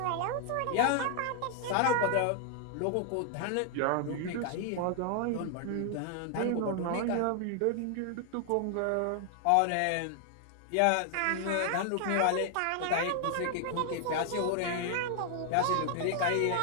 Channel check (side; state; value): both; different; correlation 0.00